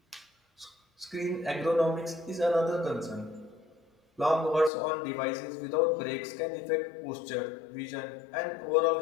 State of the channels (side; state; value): right; drops out; at 4.7 s